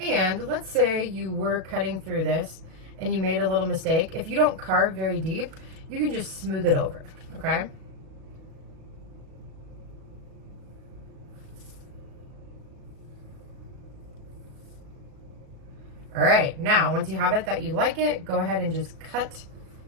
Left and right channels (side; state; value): left; late; 37 ms